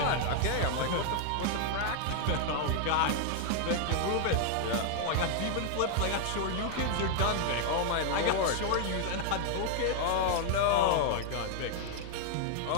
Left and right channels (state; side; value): different; both; correlation 0.00